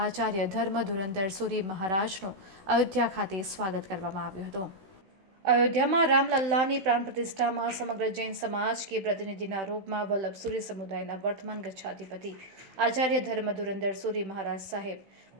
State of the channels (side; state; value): left; late; 16 ms